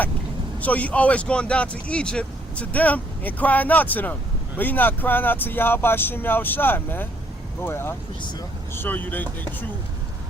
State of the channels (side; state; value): both; normal; correlation 0.68